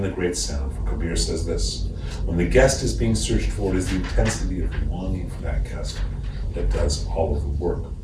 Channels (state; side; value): identical; both; correlation 1.00